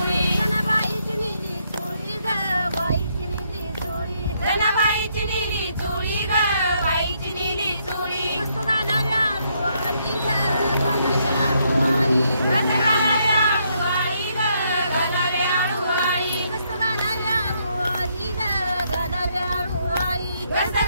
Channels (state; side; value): inverted; both; correlation -0.74